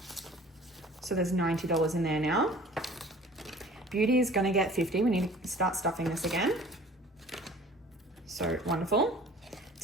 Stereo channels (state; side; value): normal; both; correlation 0.48